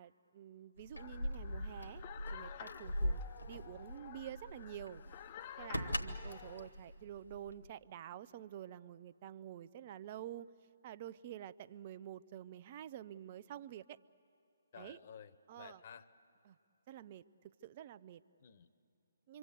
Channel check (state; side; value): inverted; both; correlation -0.75